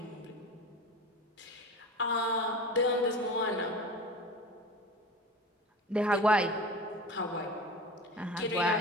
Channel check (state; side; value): normal; both; correlation 0.33